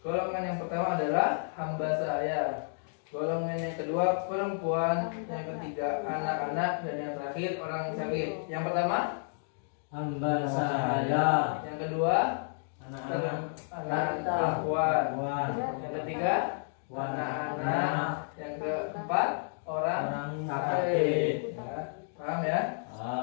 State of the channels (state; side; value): silent; right; digital silence